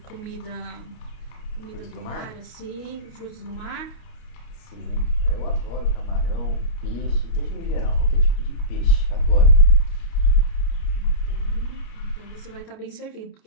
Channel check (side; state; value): right; late; 29 ms